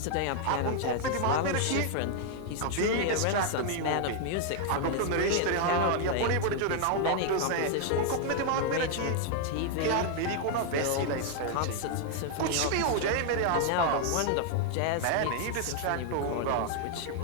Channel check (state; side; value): different; both; correlation 0.00